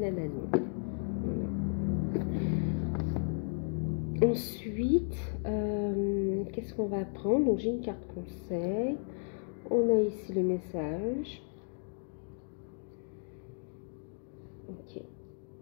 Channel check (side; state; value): right; silent; 55 dB below the other